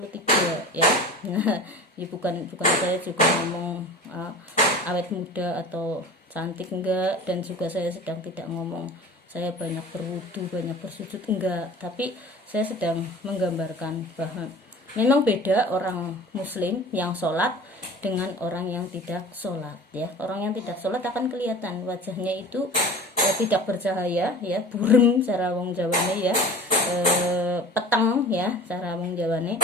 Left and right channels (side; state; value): both; normal; correlation 0.39